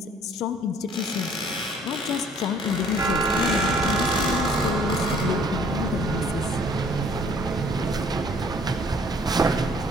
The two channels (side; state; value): both; normal; correlation 0.58